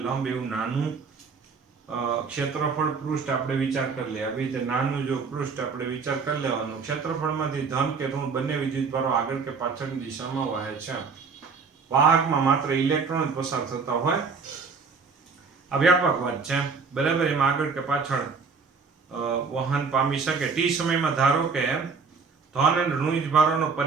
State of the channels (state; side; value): quieter; left; 5.1 dB